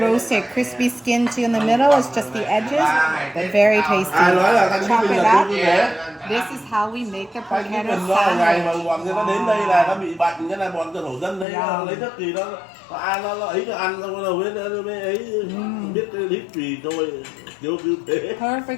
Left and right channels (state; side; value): drops out; right; at 11.5 s